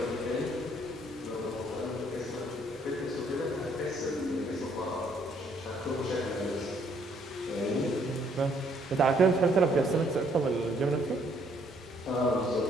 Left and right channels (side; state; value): both; normal; correlation 0.67